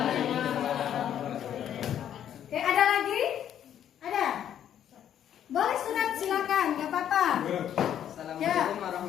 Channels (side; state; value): right; quieter; 10.1 dB